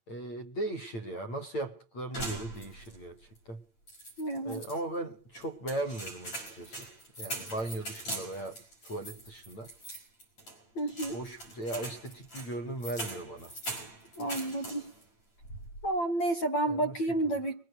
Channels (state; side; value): late; right; 8.8 ms